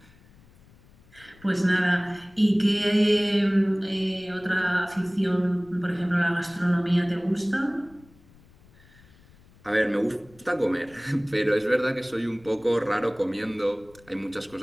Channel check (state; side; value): noise; left; rumble, 27 dB below the sound